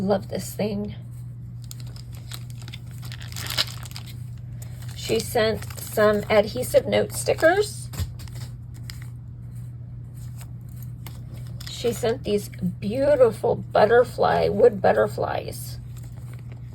this thing. She sent some adhesive note stickers. She sent these beautiful wood butterflies.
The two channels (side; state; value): both; identical; correlation 1.00